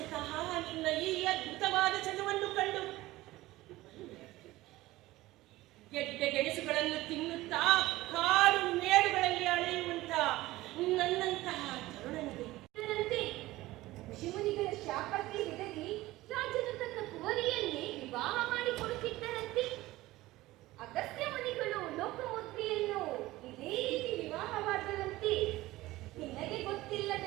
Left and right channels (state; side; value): quieter; left; 17.8 dB